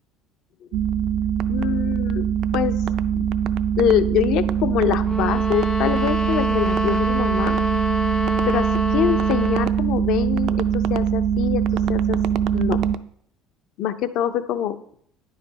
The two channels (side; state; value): both; normal; correlation 0.53